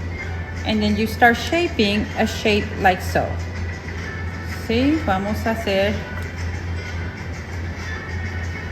and then you start shaping a shape like so. ¿Sí? Vamos a hacer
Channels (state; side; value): identical; both; correlation 1.00